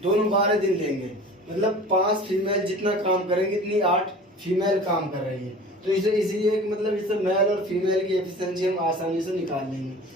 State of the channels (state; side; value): normal; both; correlation 0.41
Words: दोनों 12 दिन लेंगे। मतलब 5 फीमेल जितना काम करेंगे इतनी 8 फीमेल काम कर रही है। तो इसे इसीलिए मतलब इससे मेल और फीमेल की एफिशिएंसी हम आसानी से निकाल लेंगे।